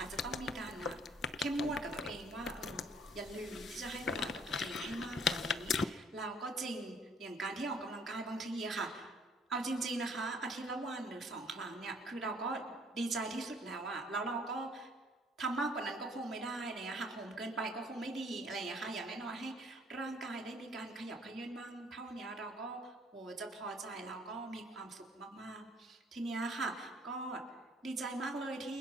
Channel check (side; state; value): both; normal; correlation 0.60